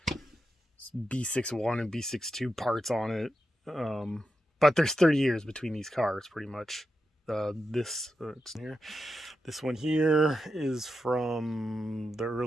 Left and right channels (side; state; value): both; normal; correlation 0.88